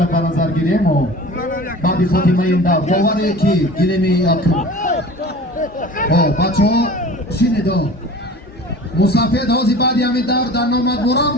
به نظر گیریم و بعد فاطمه این دور باوره که گیریم یکم بچه ها شنیدو مسافر هازی بعدی همین دور در نامد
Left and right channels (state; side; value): normal; both; correlation 0.40